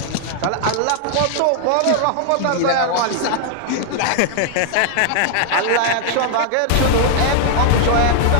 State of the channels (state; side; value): different; both; correlation 0.00